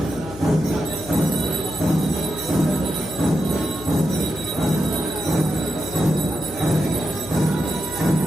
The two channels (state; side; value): noise; left; hum, 15 dB below the sound